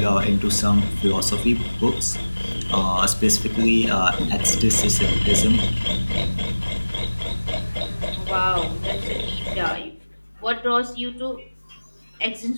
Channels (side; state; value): both; inverted; correlation -1.00